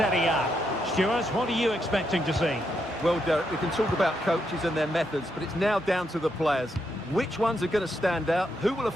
A. Stuart, what are you expecting to see? Well, Derek, we can talk about coaches and their methods, but it's now down to the players. Which ones are going to stand out, who will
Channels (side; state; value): both; normal; correlation 0.80